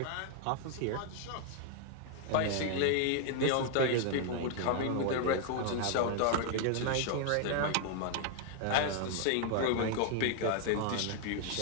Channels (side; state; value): both; different; correlation 0.00